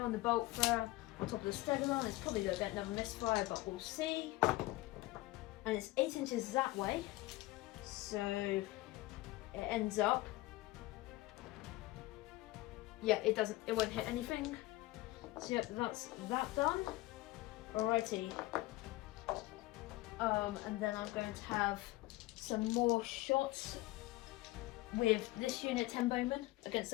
the bolt thrower on top of the stegodon. It's probably going to get another misfire, but we'll see. And it's 8 inches that way, so it ends up. Yeah, it won't hit anything. So yep, that's that done. Alrighty. And then I'm going to have some more shots with this unit 10 bowmen against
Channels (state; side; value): quieter; right; 19.2 dB